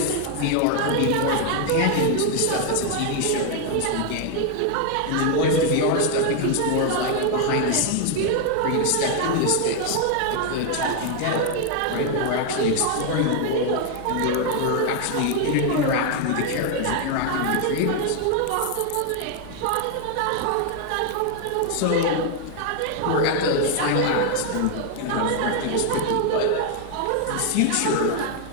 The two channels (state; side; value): different; both; correlation 0.00